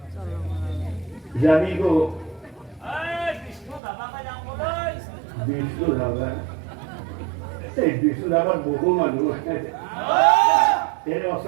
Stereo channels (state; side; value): drops out; left; at 3.8 s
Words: যাবি গো বিষ্ণু ধাবা এই বিষ্ণু ধাবার বহু মানুষ এর